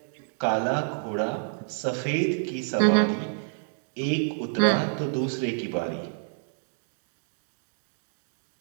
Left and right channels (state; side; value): silent; left; digital silence